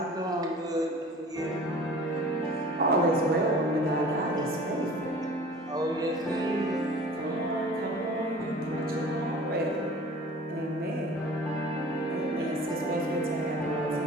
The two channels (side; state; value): both; normal; correlation 0.44